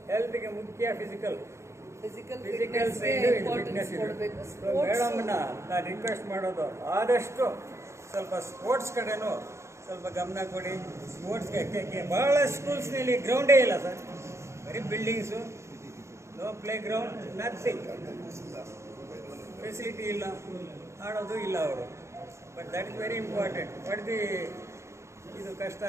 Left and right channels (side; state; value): left; late; 0.14 ms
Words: ಹೆಲ್ತ್ಗೆ ಮುಖ್ಯ ಫಿಸಿಕಲ್ ಸೈಡ್, ಫಿಟ್ನೆಸ್ ಇದೆ. ಮೇಡಮ್ನ ನಾನು ರಿಕ್ವೆಸ್ಟ್ ಮಾಡೋದು, ಆದಷ್ಟು ಸ್ವಲ್ಪ ಸ್ಪೋರ್ಟ್ಸ್ ಕಡೆನೂ ಸ್ವಲ್ಪ ಗಮನ ಕೊಡಿ. ಸ್ಪೋರ್ಟ್ಸ್ಗೆ ಭಾಳ ಸ್ಕೂಲ್ಸ್ನಲ್ಲಿ ಗ್ರೌಂಡೇ ಇಲ್ಲ ಸರ್, ಬರೀ buildings, no play ground, nothing, facility ಇಲ್ಲ, ಆಡೋದು ಇಲ್ಲ ಅವರು. But that is very important. ಬಡ್ದು ಇದು ಕಷ್ಟ,